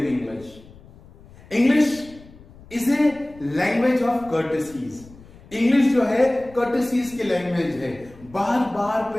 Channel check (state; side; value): noise; left; rumble, 22 dB below the sound